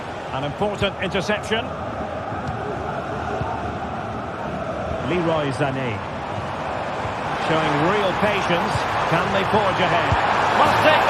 An important interception. Leroy Sané. Showing real patience. Can they forge ahead? Must take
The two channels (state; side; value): identical; both; correlation 1.00